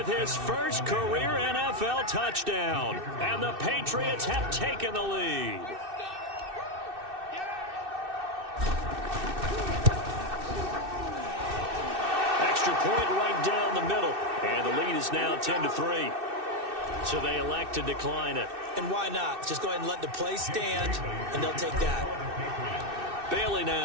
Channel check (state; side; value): late; left; 2.6 ms